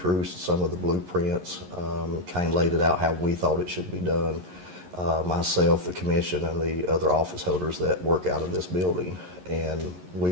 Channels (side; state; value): left; late; 11 ms